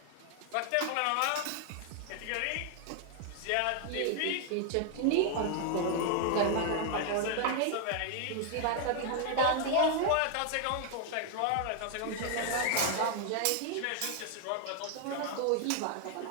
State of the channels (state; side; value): different; both; correlation 0.00